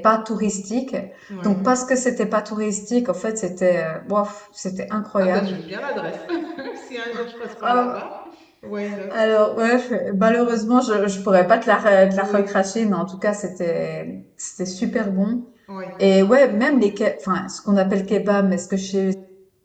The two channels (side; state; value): both; identical; correlation 1.00